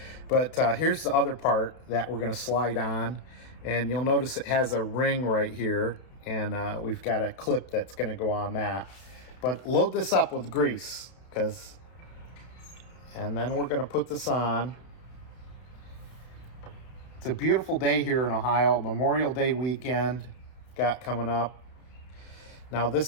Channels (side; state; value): right; late; 32 ms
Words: But here's the other part that we're going to slide on, and you'll notice it has a ring right here, and we've got a clip that's going to go on that. But load this up with grease, and then we're going to put this on. It's a beautiful day here in Ohio. Memorial Day weekend got coming up. Now